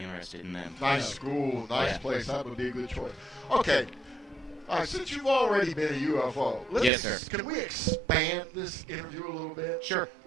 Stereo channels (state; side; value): drops out; left; at 6.9 s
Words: in them. Nice school, nice place. That would be a good choice. Okay. All right, since you've already been a UFO, yes, sir. Can we expand this interview a little bit? Sure.